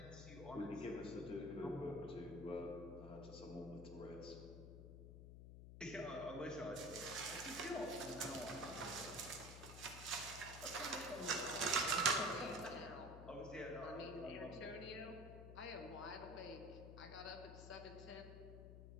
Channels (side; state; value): left; noise; hum, 11 dB below the sound